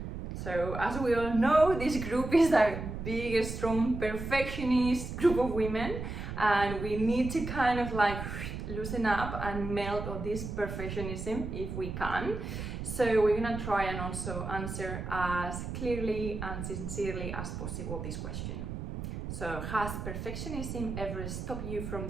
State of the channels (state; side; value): noise; right; rumble, 6 dB below the sound